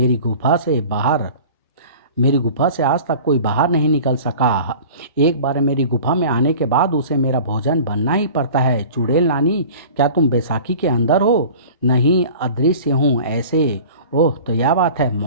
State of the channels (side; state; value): both; inverted; correlation -0.42